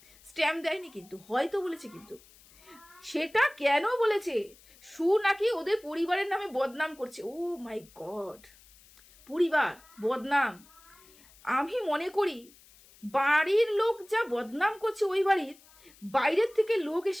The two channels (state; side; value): noise; left; hiss, 26 dB below the sound